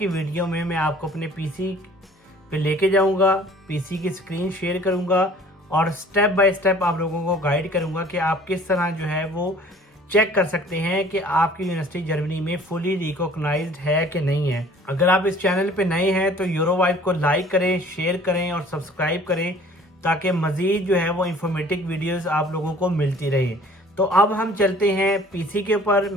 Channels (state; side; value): normal; both; correlation 0.52